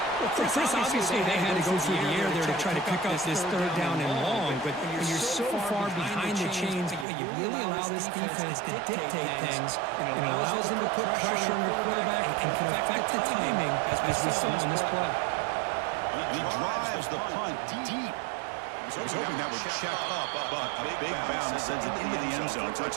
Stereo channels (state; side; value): drops out; left; at 7.1 s